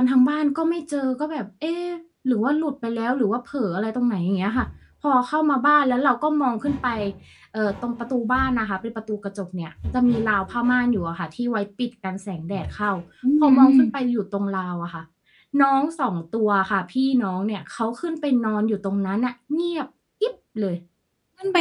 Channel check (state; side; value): identical; both; correlation 1.00